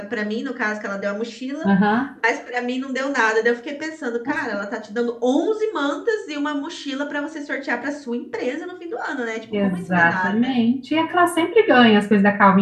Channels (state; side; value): identical; both; correlation 1.00